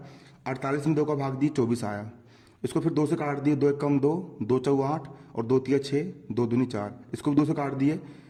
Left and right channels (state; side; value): identical; both; correlation 1.00